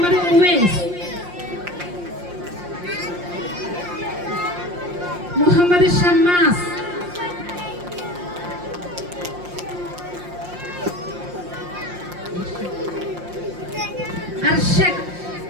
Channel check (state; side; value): late; left; 5.7 ms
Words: Uvais, Muhammad Shammas, Arshak,